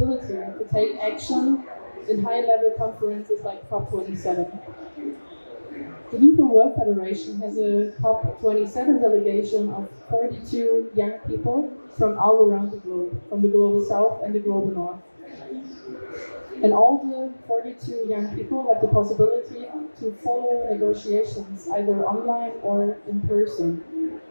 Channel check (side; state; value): both; inverted; correlation -1.00